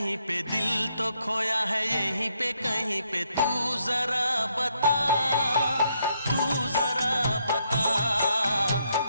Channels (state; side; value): inverted; both; correlation -0.75